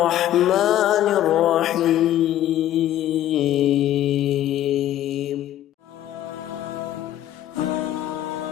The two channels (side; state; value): right; quieter; 12.5 dB